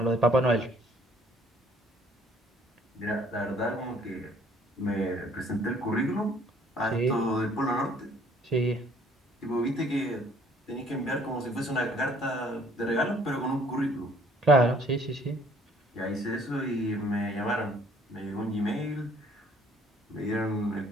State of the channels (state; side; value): normal; both; correlation 0.59